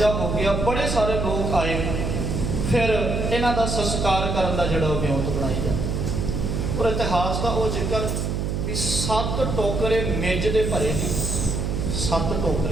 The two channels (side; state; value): right; noise; hum, 1 dB below the sound